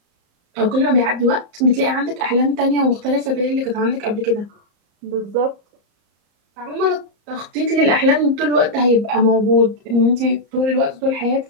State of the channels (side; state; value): left; late; 34 ms